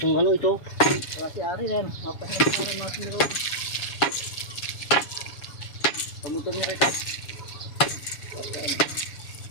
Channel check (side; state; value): right; late; 7.2 ms